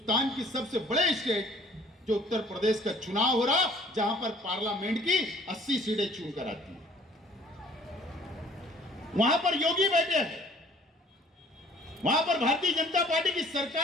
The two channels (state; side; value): normal; both; correlation 0.55